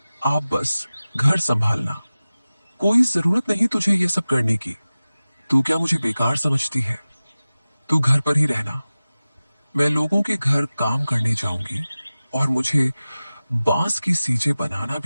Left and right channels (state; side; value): inverted; both; correlation -0.97